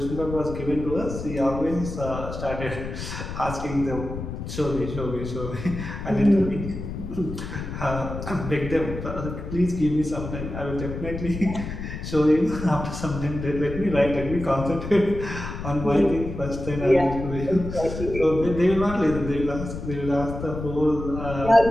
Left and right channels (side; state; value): left; noise; rumble, 7 dB below the sound